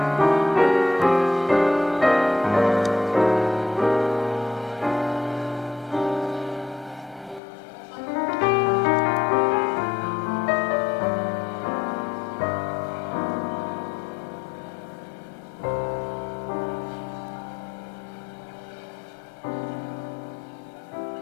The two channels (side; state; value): right; drops out; at 7.4 s